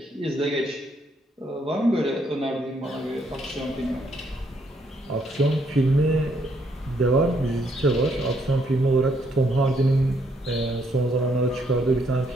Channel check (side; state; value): both; normal; correlation 0.72